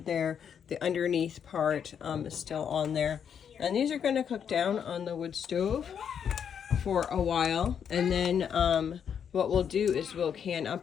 the underneath part is still on there. And these are going to cook down on the wood stove for a while. And then what we'll do is we'll can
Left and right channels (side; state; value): right; quieter; 7.9 dB